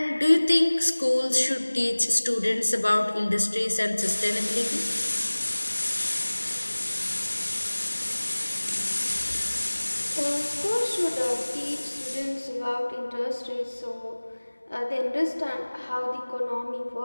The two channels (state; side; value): inverted; both; correlation -1.00